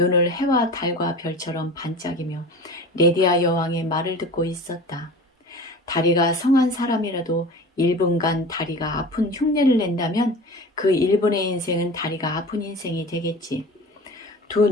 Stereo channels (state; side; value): normal; both; correlation 0.36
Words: 해와 달과 별처럼 반짝이며 레디아 여왕의 말을 듣고 있었다. 다리가 성한 사람이라도 1분간 다리가 아픈 흉내를 낸다면 그 1분의 인생은 다리가 아픈 인생이 되겠지. 두